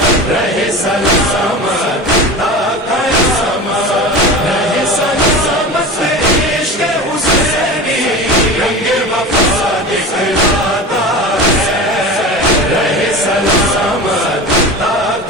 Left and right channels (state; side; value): normal; both; correlation 0.31